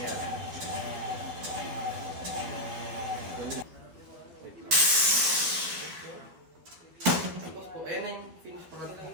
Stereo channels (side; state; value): left; late; 12 ms